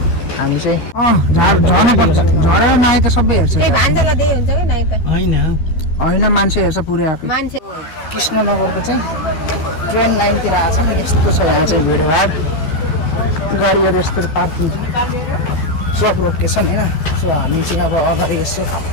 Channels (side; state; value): right; late; 13 ms